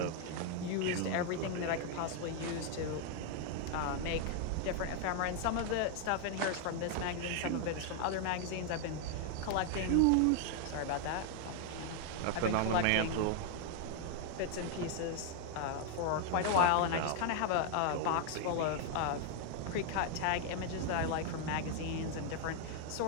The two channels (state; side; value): different; both; correlation 0.00